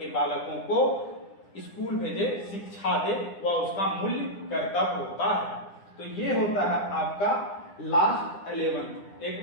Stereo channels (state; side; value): late; right; 9.9 ms